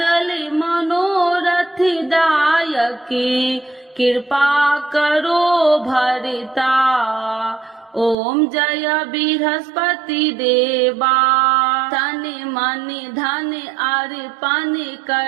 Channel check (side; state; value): left; drops out; at 8.2 s